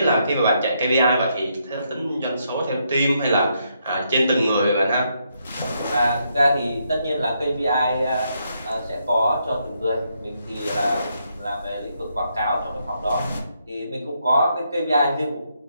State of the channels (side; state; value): both; inverted; correlation -0.77